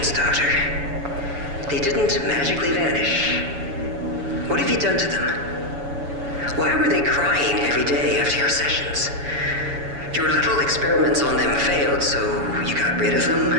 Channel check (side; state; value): left; late; 7.1 ms